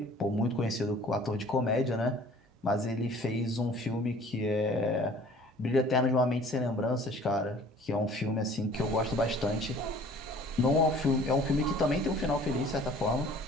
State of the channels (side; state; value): both; normal; correlation 0.51